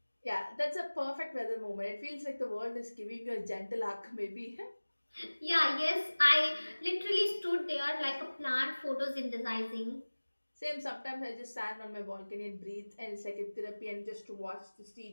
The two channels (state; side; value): inverted; both; correlation -1.00